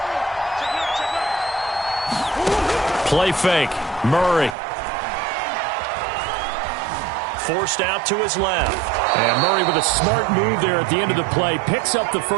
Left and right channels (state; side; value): drops out; left; at 4.5 s